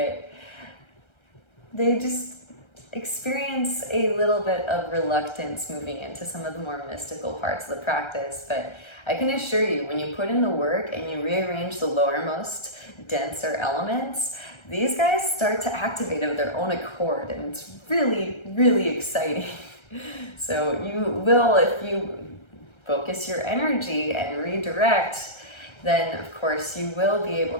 it? They just experience a little bit of reluctance moving into some of the more mystical parts of the practice, but I can assure you, when you put in the work and you rearrange the lowermost, denser elements, these guys start to activate of their own accord, and it's really, really exciting. So you will, if you focus your energy and redirect, then of course you will be able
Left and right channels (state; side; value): late; right; 1.3 ms